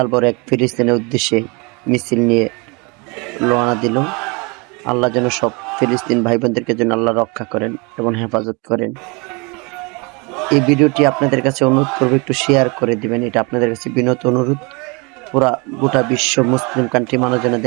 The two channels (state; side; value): quieter; left; 29.3 dB